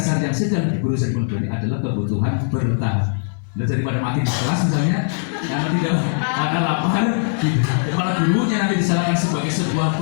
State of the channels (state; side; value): silent; right; digital silence